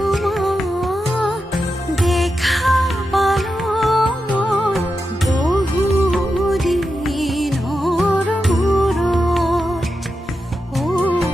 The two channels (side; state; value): both; normal; correlation 0.89